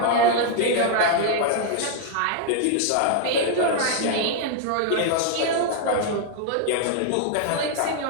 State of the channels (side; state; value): both; different; correlation 0.00